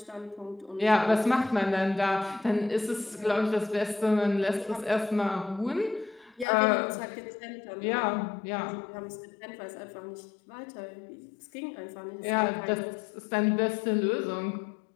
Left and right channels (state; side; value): drops out; right; at 6.5 s